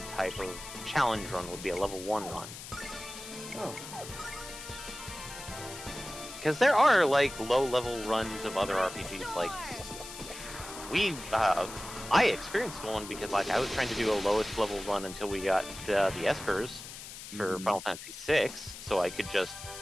type of challenge run, would be a level 1 run. Oh. Because there are, like, low-level runs of other RPGs, like, I experienced one because, like, I was trying to do a lowest level run until we got the Espers for Final Fantasy VI, so I could just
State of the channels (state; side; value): noise; left; hiss, 12 dB below the sound